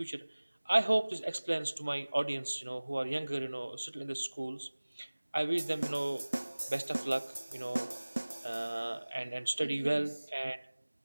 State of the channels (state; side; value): inverted; both; correlation -1.00